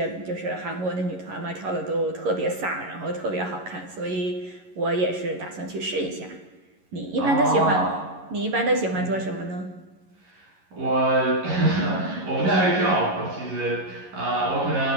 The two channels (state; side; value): late; left; 11 ms